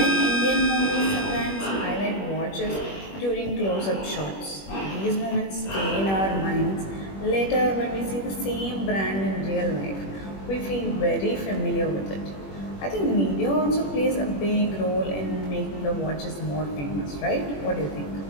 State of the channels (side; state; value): right; late; 21 ms